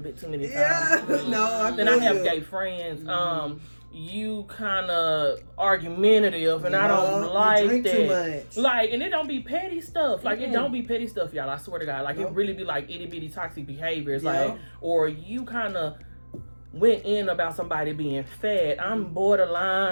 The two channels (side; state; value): both; inverted; correlation -1.00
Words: bit too many times. Yeah. No, Then I have gay friends. You kind of argumentative, and I don't like you drink that. Too much. Like, and it don't be petty stuff. Like, it don't be petty stuff, y'all. I swear to God. Like, it really be like itty bitty toxic behaviors. Like, or you kind of went in about somebody being fat. I'm